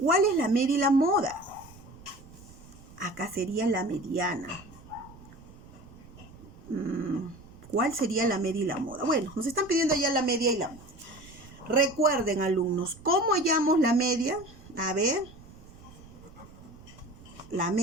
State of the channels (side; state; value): right; noise; rumble, 20 dB below the sound